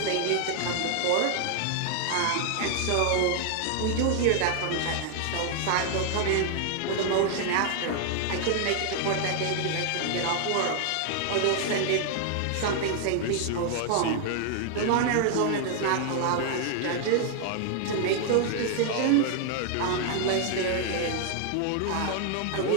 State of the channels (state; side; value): different; both; correlation 0.00